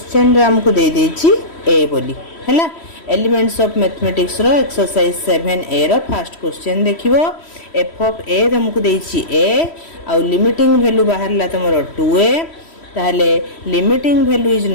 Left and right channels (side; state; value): right; late; 3.1 ms